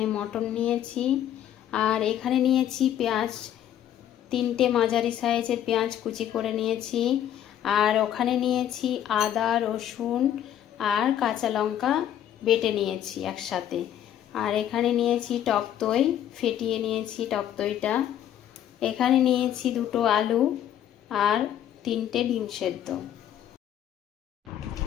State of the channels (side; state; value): right; quieter; 10.8 dB